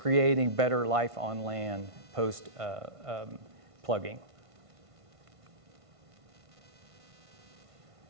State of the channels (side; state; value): left; late; 1.5 ms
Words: better life on land post plugging.